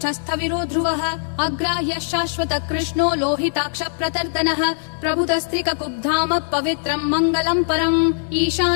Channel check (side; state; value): right; silent; digital silence